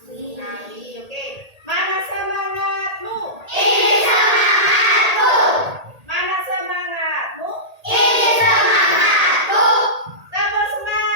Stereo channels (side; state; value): left; late; 1.8 ms